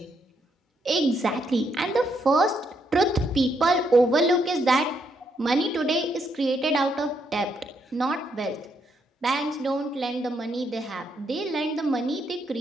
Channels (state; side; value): normal; both; correlation 0.76